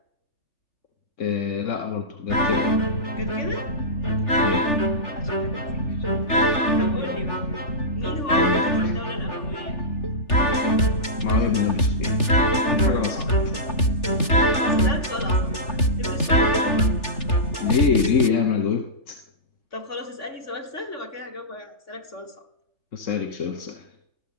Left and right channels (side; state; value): right; late; 3.4 ms